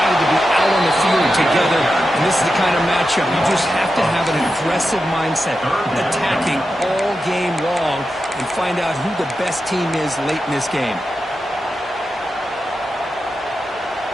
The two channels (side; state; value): both; normal; correlation 0.90